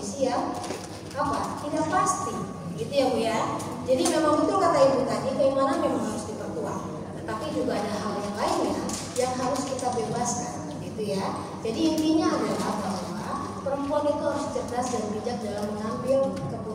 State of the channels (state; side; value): identical; both; correlation 1.00